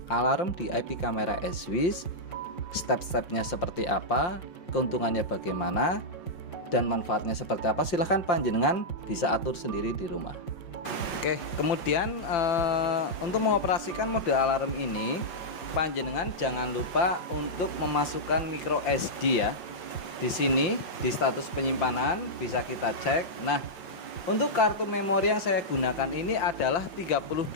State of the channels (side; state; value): right; late; 5.8 ms